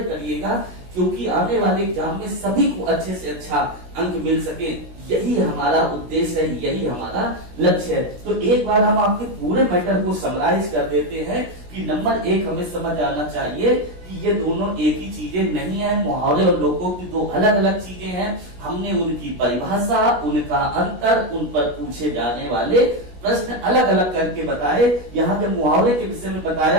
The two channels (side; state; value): left; late; 16 ms